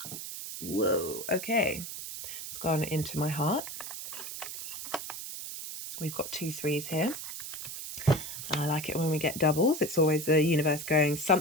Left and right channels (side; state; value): right; noise; hiss, 8 dB below the sound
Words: Whoa, okay. It's gone into my heart. We've got 2 3s here. I like it when we get doubles. It's always the universe going,